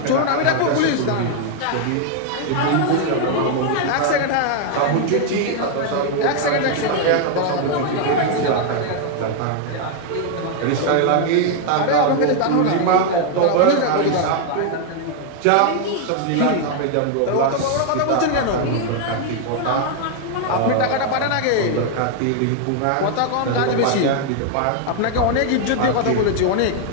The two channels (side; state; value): both; different; correlation 0.00